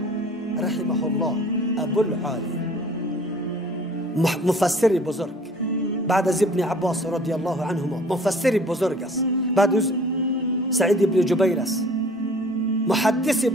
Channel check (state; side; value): normal; both; correlation 0.50